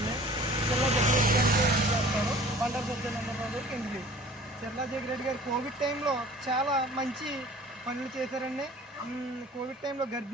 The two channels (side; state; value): both; normal; correlation 0.47